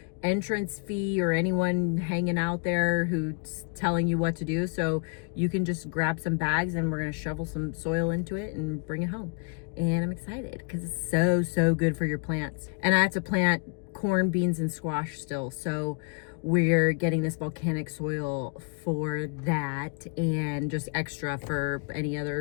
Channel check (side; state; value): right; quieter; 35.6 dB